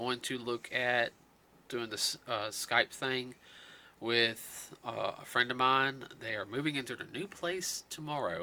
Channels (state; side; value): identical; both; correlation 1.00